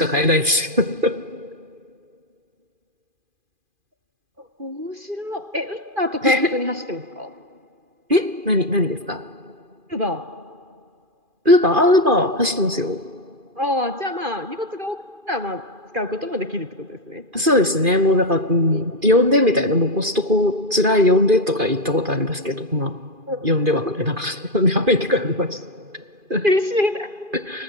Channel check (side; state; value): left; late; 2.4 ms